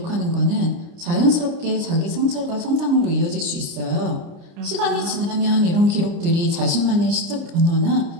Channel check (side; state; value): left; late; 29 ms